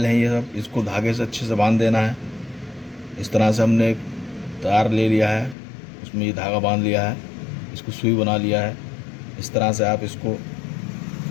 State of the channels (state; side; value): drops out; right; at 5.6 s